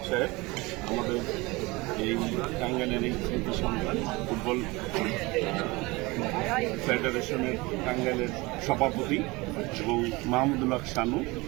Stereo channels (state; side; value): quieter; left; 23.4 dB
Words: সাহেব, আমাদের এই টাঙ্গাইলের এই স্মৃতি সন্তান, ফুটবল ফেডারেশনের টাঙ্গাইলের সভাপতি এবং মাহমুদুল্লাহ শানু,